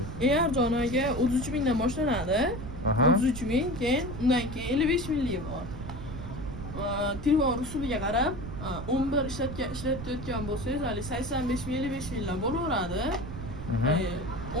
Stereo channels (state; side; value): noise; right; rumble, 9 dB below the sound